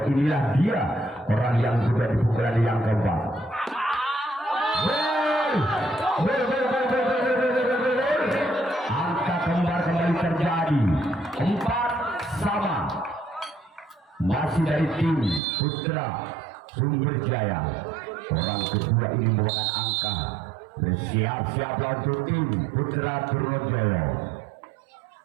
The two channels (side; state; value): left; drops out; at 15.4 s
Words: Inilah dia orang yang kedua di pukulan yang keempat. Angka kembar kembali terjadi 4-sama. Masih dari tim Putra Sumberjaya. Orang kedua ini membawakan angka. Bersiap-siap untuk tim Putra Trojolo